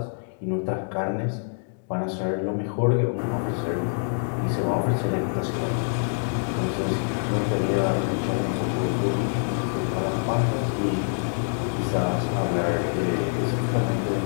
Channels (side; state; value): right; silent; digital silence